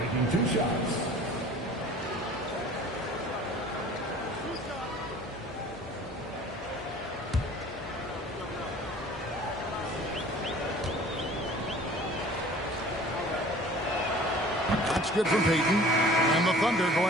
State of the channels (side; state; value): both; normal; correlation 0.46